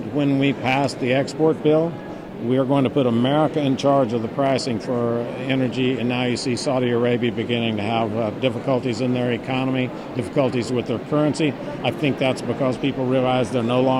when we pass the export bill, we are going to put America in charge of the pricing for energy, and now you see Saudi Arabia beginning to have difficulties in their economy, difficulties with their currency. I think that's because people realize they're no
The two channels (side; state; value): both; identical; correlation 1.00